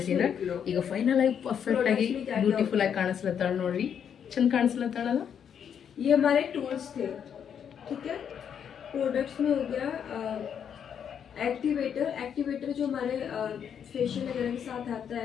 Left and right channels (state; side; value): quieter; right; 8.1 dB